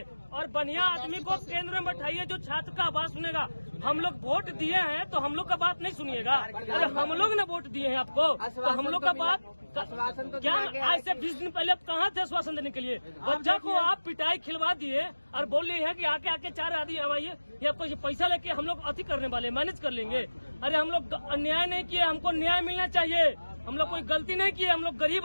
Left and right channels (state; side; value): inverted; both; correlation -1.00